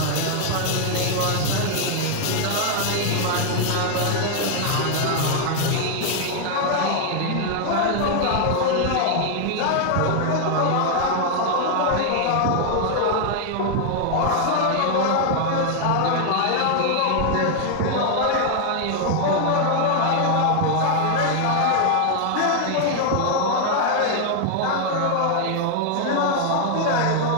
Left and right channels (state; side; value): different; both; correlation 0.00